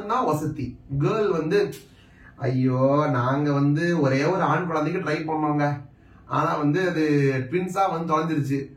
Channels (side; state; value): both; identical; correlation 1.00